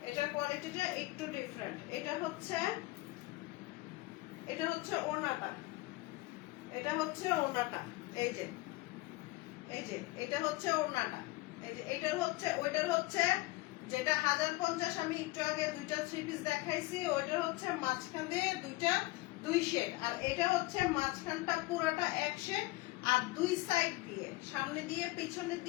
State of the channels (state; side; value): quieter; right; 20.4 dB